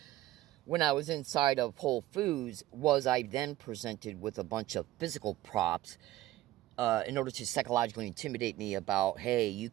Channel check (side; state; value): left; quieter; 15.4 dB